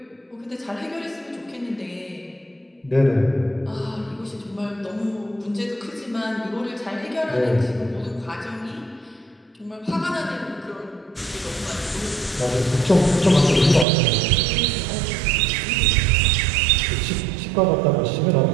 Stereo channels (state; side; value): drops out; left; at 13.9 s